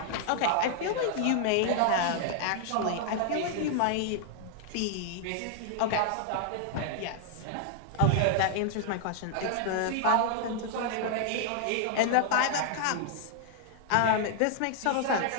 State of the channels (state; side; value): different; both; correlation -0.01